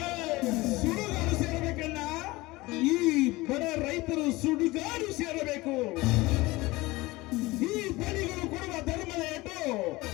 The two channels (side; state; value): right; quieter; 20.8 dB